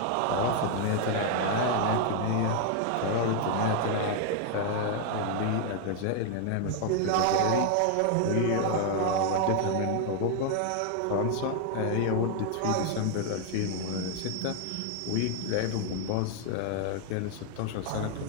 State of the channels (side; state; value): both; different; correlation 0.00